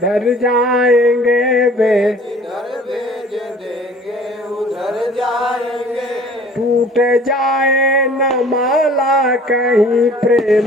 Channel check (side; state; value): both; normal; correlation 0.50